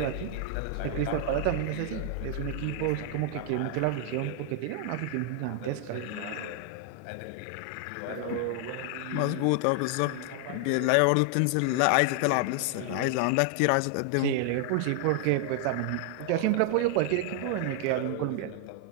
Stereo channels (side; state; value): both; different; correlation 0.00